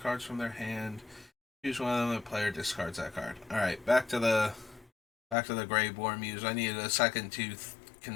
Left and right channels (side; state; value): right; drops out; at 5.4 s